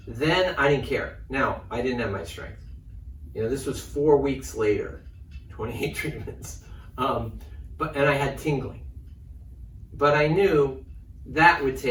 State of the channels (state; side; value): identical; both; correlation 1.00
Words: then I didn't care. Now, I didn't have my strength. You know, this was 4 weeks later, 28 treatments, and I had tingling. But I knew that would